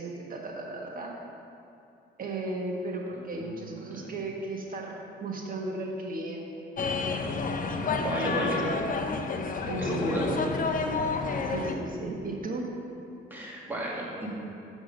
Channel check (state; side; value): normal; both; correlation 0.34